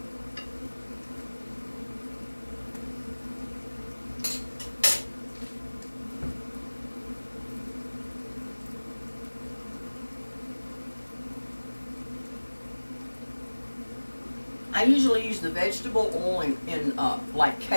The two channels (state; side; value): inverted; both; correlation -1.00